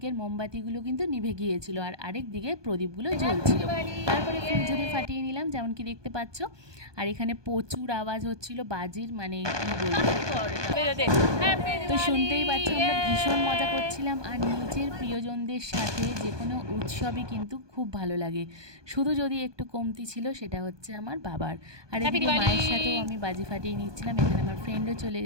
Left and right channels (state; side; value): late; left; 1.2 ms